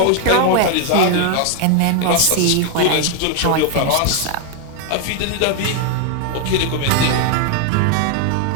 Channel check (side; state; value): both; different; correlation 0.01